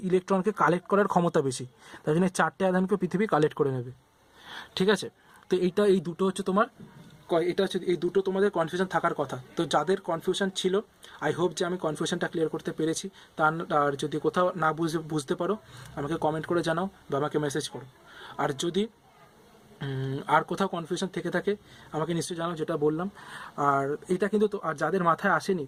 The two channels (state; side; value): identical; both; correlation 1.00